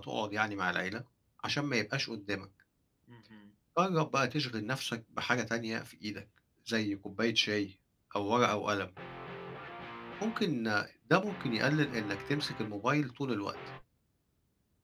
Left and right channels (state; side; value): identical; both; correlation 1.00